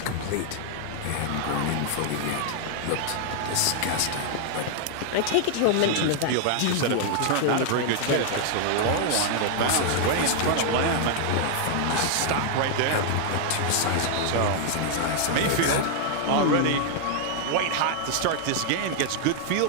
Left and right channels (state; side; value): different; both; correlation 0.00